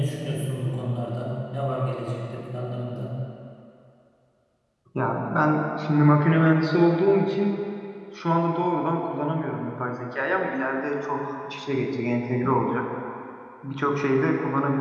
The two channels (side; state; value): both; identical; correlation 1.00